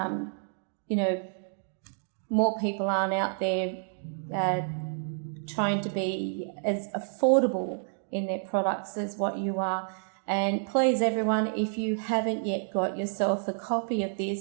more people aren't out there trying to be as affordable in their products as what you are. And please, everyone, if you haven't yet got yourself a copy of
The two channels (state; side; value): silent; left; digital silence